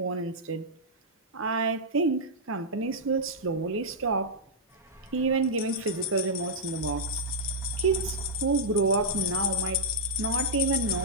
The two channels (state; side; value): normal; both; correlation -0.08